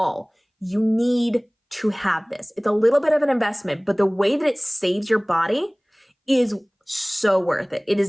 you need to have this. It's a little bit of an investment, but the way that it saves your body is so worth it. It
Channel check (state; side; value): identical; both; correlation 1.00